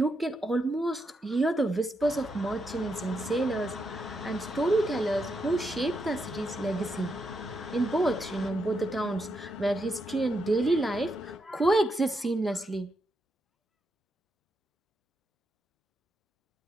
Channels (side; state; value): both; normal; correlation 0.82